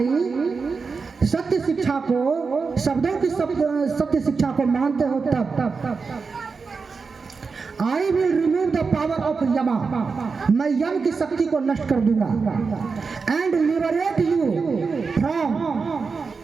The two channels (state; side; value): quieter; left; 4.8 dB